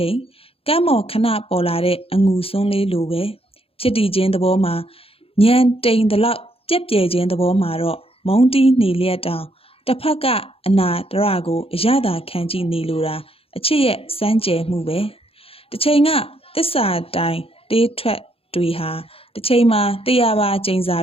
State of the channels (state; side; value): late; right; 0.27 ms